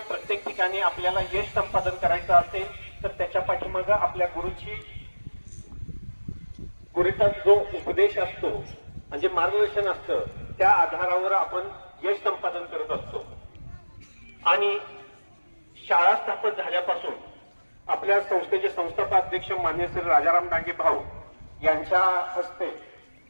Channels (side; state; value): both; inverted; correlation -1.00